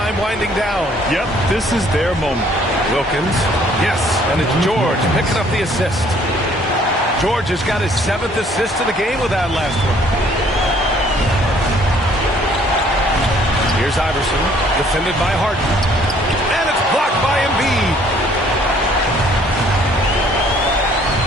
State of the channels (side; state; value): both; normal; correlation 0.60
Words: winding down. Yep, this is their moment. Wilkins, yes, and it's George picking up the assist. George has got his 7th assist of the game with that last one. Here's Iverson, defended by Harden. And it's blocked by Embiid.